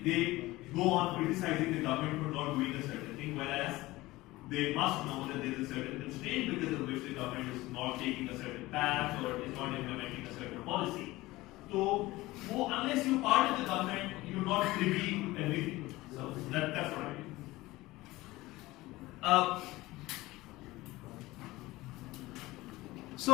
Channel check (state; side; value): quieter; right; 19.2 dB